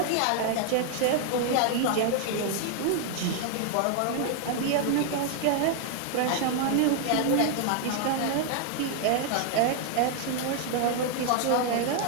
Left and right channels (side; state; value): both; different; correlation 0.00